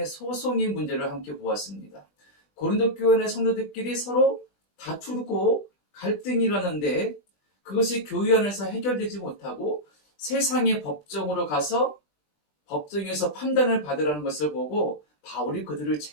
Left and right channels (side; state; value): right; late; 20 ms